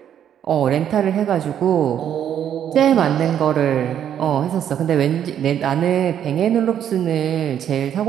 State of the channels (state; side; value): quieter; left; 9.7 dB